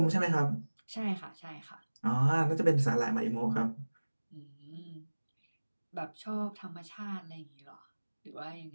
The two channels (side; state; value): both; inverted; correlation -1.00